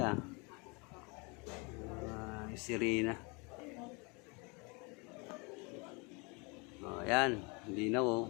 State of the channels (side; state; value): right; quieter; 30.2 dB